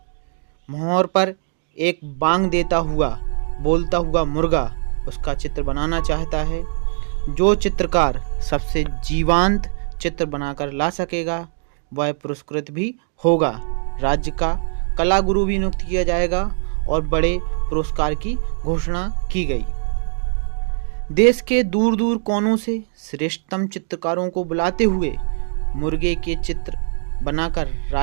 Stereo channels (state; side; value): silent; left; digital silence